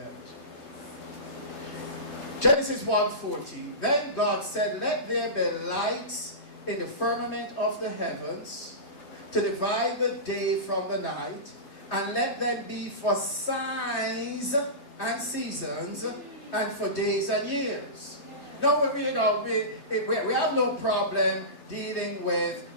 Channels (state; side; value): late; right; 3.1 ms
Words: Genesis 1:14. Then God said, let there be lights in the firmament of the heavens to divide the day from the night, and let them be for signs and seasons, and for days and years. No, we have no problem dealing with